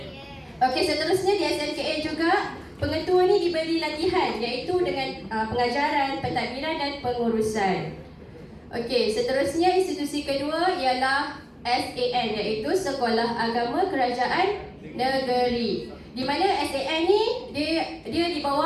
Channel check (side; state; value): both; identical; correlation 1.00